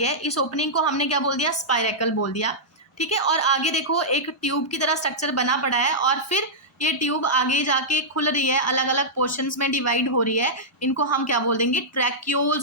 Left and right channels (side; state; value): both; normal; correlation -0.12